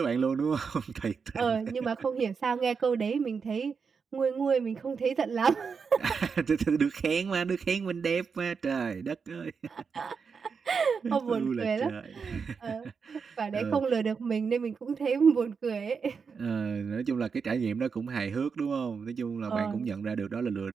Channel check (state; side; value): quieter; left; 5.7 dB